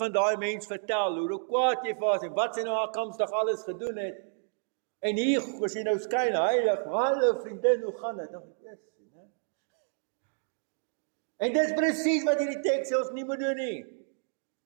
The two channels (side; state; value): left; silent; digital silence